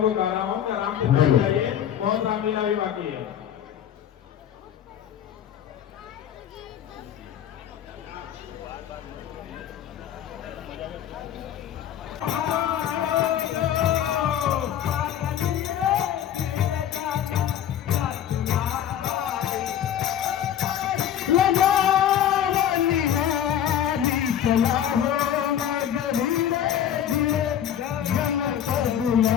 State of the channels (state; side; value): quieter; right; 10.1 dB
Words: को कह रहा हूँ कि आराम से बैठ जाइए बहुत रामलीला भी बाकी है।